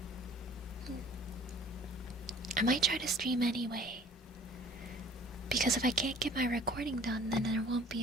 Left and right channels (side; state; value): both; normal; correlation 0.50